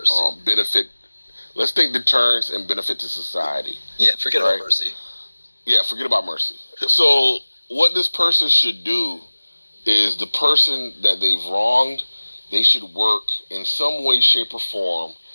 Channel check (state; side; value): inverted; both; correlation -1.00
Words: benefit. Let's think deterrence and benefit to society. Yeah, forget about mercy. Yeah, forget about mercy. So what this person should do is the person that they've wronged, they should work in some way, shape, or form